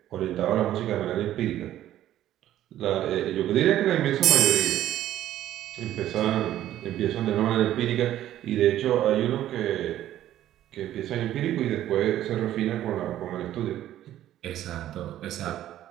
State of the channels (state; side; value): quieter; left; 12.7 dB